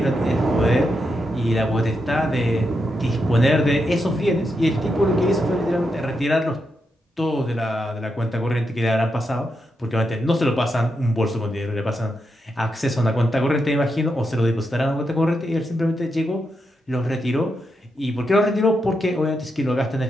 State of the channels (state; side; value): normal; both; correlation 0.84